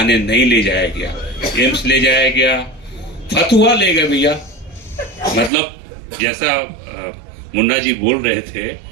नहीं ले जाया गया, एम्स ले जाया गया, फतुहा ले गए भैया। मतलब जैसा मुन्ना जी बोल रहे थे,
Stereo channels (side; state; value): left; drops out; at 5.5 s